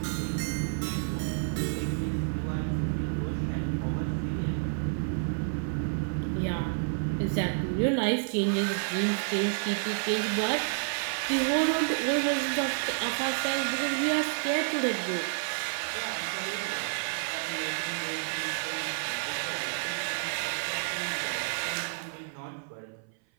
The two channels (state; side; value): silent; left; 55 dB below the other